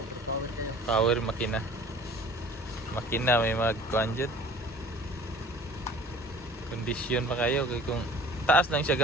Power makina may magkuhan dyan. Kondisyon pa kayo kung taas lang siya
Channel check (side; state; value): both; normal; correlation 0.46